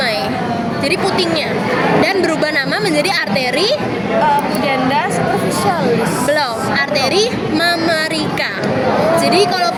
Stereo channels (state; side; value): identical; both; correlation 1.00